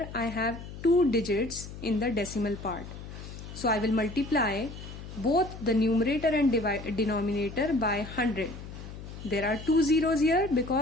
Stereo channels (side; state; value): left; noise; hum, 12 dB below the sound